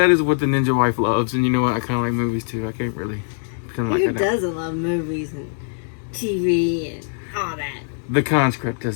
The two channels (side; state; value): right; silent; digital silence